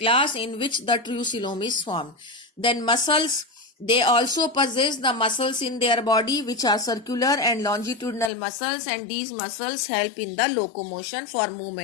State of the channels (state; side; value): drops out; right; at 8.3 s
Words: in which the true coelom is formed. Then muscles, they also possess the muscles in their body which are circular and longitudinal muscles, and these muscles help in the locomotion for